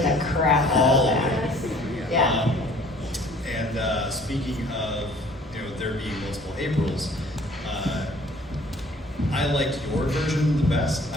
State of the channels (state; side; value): normal; both; correlation 0.54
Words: the crap out all of of that. it. Yeah. And speaking of there being multiple Aprils, I liked your version the best.